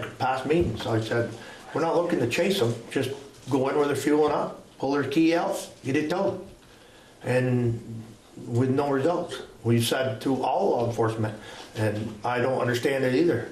past meetings. I said, we're not looking to chase them, just go in where they're fueling up, pull their key out, get it towed. And with no results. We said to all law enforcement, and I don't understand it either,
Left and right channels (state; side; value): identical; both; correlation 1.00